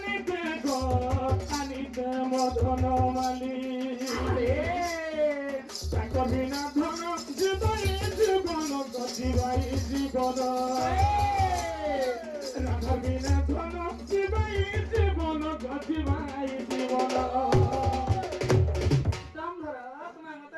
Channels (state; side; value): identical; both; correlation 1.00